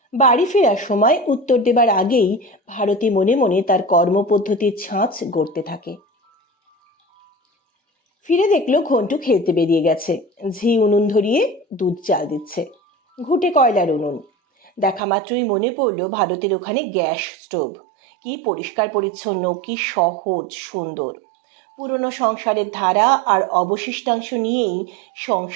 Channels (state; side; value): drops out; left; at 15.0 s